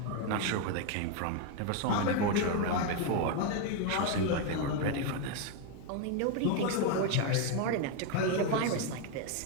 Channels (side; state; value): both; different; correlation 0.02